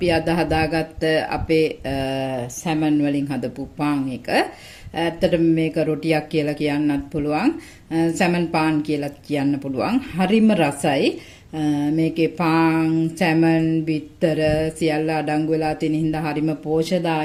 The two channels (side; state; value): both; identical; correlation 1.00